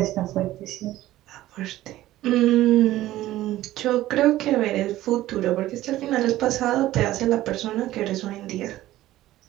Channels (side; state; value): left; quieter; 15.2 dB